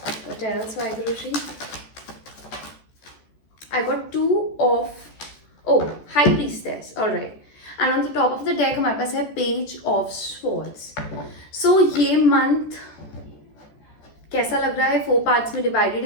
What else, Vaiguruji? I got Two of High Priestess. All right. And on the top of the deck हमारे पास है Page of Swords. So ये month कैसा लग रहा है? 4 parts में divided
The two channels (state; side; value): late; right; 14 ms